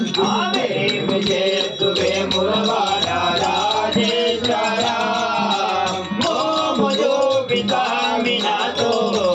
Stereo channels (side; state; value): both; identical; correlation 1.00